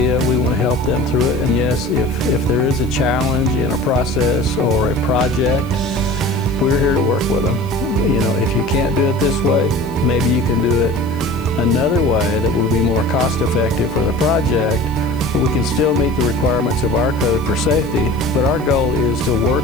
we want to help them through it. And yes, if there is a challenge in a process or a project, we're here to work with them. You know, if you can't do it this way, maybe you can do it another way that will be more cost effective for the project, but we can still meet the requirements of our code for safety. But our goal is to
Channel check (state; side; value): noise; left; hiss, 25 dB below the sound